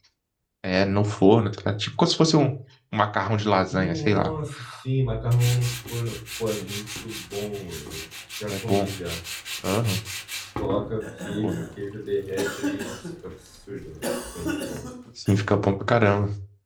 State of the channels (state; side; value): identical; both; correlation 1.00